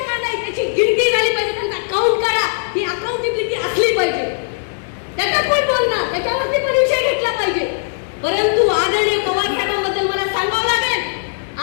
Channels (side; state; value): right; silent; digital silence